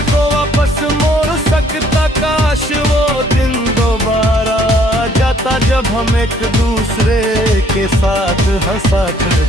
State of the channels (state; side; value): normal; both; correlation 0.63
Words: को वापस मोड़ सकता, काश वो दिन दोबारा आ जाता जब हम एक दूसरे के साथ हंसा